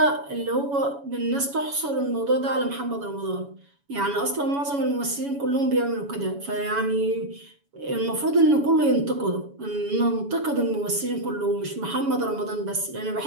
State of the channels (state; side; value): late; left; 7.1 ms